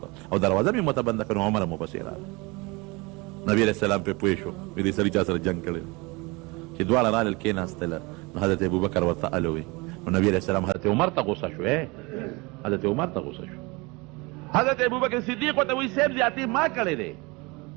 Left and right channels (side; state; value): left; quieter; 25.9 dB